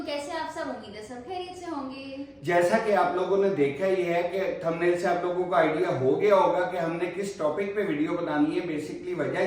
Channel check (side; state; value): both; identical; correlation 1.00